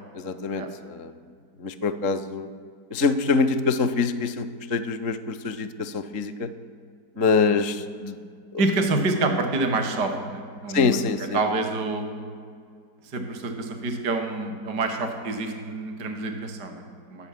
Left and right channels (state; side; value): late; left; 3.8 ms